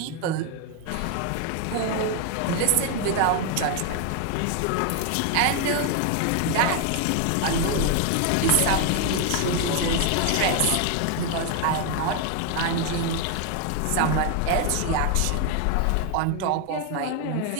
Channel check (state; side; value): different; both; correlation 0.01